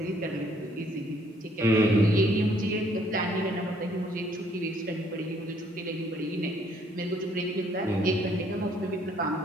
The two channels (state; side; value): normal; both; correlation 0.65